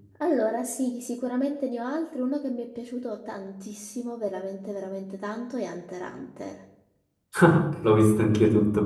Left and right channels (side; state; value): both; identical; correlation 1.00